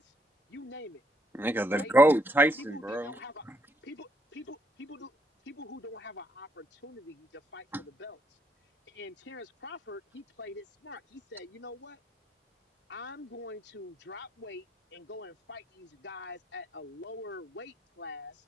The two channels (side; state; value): both; normal; correlation 0.73